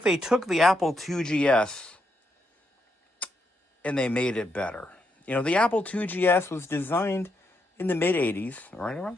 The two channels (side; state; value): both; normal; correlation 0.80